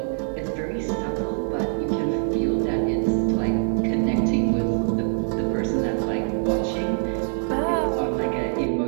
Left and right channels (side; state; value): left; silent; digital silence